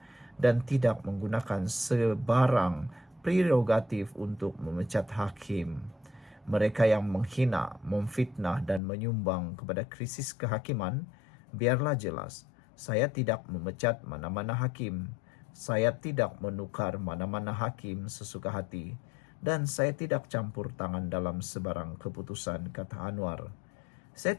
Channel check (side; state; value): right; drops out; at 8.8 s